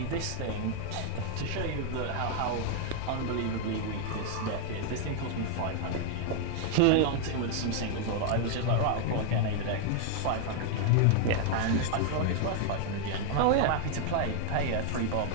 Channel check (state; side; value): different; both; correlation 0.00